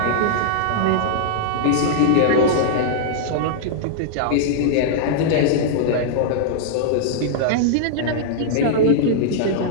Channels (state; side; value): different; both; correlation -0.02